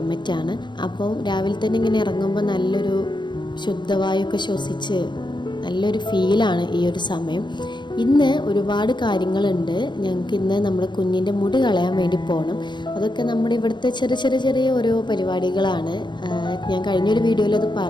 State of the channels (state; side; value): late; right; 0.22 ms